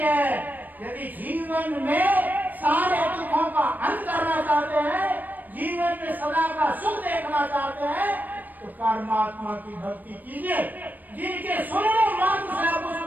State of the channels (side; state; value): left; late; 0.086 ms